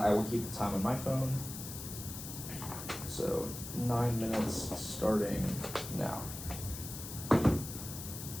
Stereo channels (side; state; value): left; noise; hiss, 9 dB below the sound